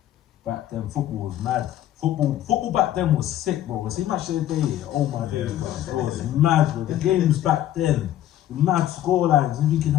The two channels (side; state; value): right; quieter; 12.4 dB